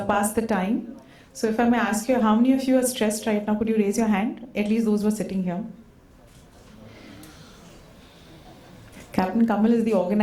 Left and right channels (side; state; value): both; identical; correlation 1.00